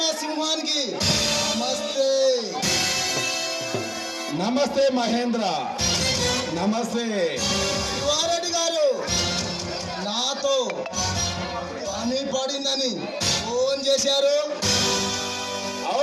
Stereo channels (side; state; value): both; identical; correlation 1.00